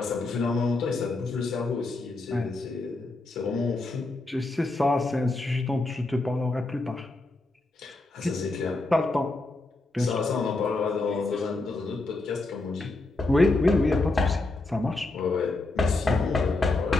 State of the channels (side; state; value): right; quieter; 3.1 dB